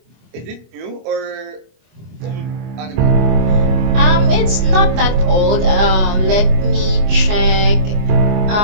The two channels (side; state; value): left; late; 24 ms